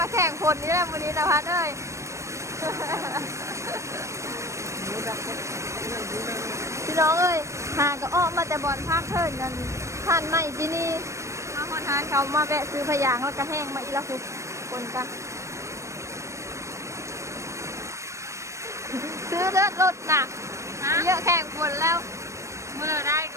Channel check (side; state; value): left; late; 0.14 ms